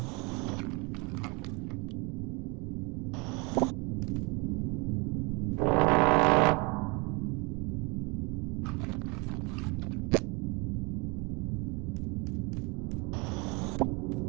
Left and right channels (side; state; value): left; quieter; 29.3 dB